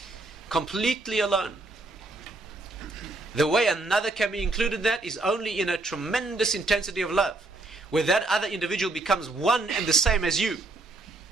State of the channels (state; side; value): quieter; left; 3.1 dB